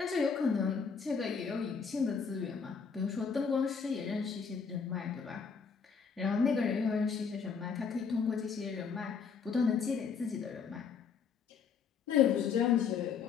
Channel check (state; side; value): quieter; right; 6.0 dB